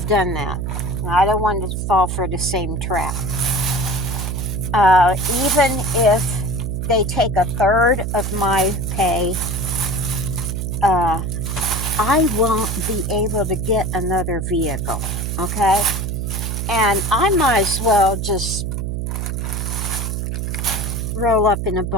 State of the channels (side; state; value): right; noise; hum, 2 dB below the sound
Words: done that. I don't want to fall for the same trap. Even if they take a third of my pay, uh, I won't be able to get another vehicle. Okay? And I might as well just roll up in a